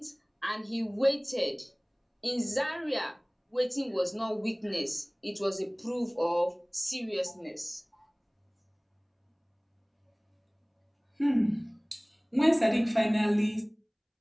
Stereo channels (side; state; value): both; identical; correlation 1.00